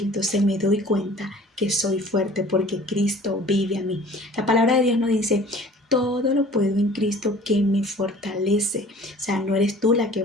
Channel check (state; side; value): normal; both; correlation 0.48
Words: entonces me doy cuenta que soy fuerte porque Cristo vive en mí. La palabra de Dios nos dice, todo lo puedo en Cristo que me fortalece. O sea, no eres tú la que